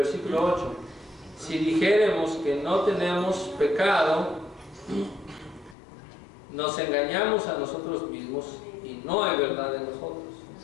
8. Si dijéremos que no tenemos pecado, nos engañamos a nosotros mismos y no hay verdad en nosotros.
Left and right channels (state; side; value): drops out; right; at 5.8 s